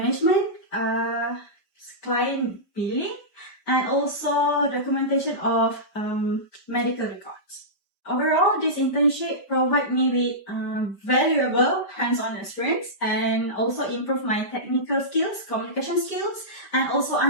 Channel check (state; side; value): late; right; 5.1 ms